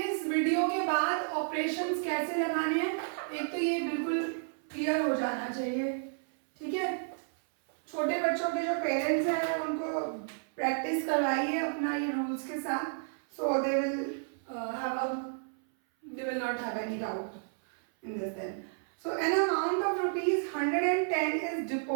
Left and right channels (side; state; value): left; silent; 57 dB below the other